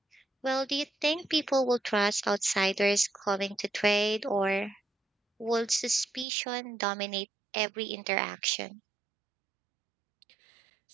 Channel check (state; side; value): drops out; left; at 6.2 s